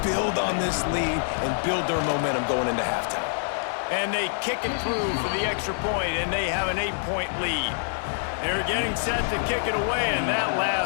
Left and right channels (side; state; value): right; silent; digital silence